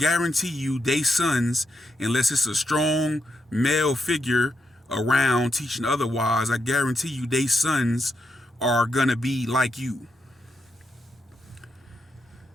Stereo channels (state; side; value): normal; both; correlation 0.82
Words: you they sons, unless it's a strong male figure around teaching otherwise, I guarantee you they sons are gonna be like you.